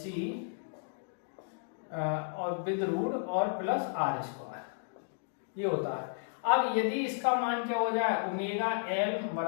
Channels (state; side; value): silent; right; digital silence